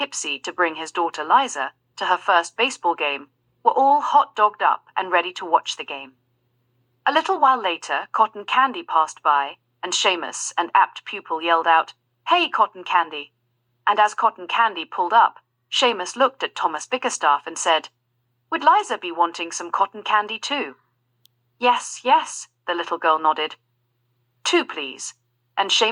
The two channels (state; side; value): identical; both; correlation 1.00